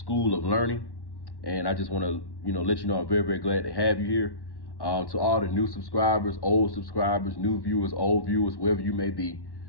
of Learning. And I just want to, let you know I'm very, very glad to have you here. To all the new subscribers, old subscribers, new viewers, old viewers, wherever you may be,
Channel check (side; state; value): right; late; 1.1 ms